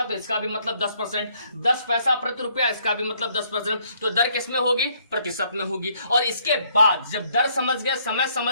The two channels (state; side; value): inverted; both; correlation -0.68